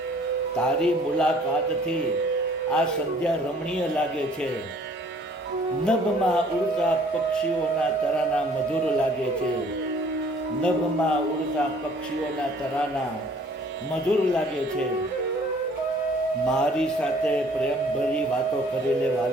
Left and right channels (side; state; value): both; normal; correlation 0.56